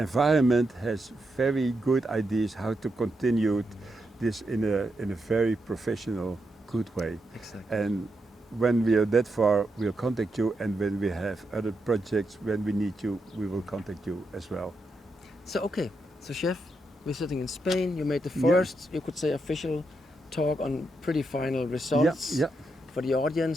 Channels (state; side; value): normal; both; correlation 0.83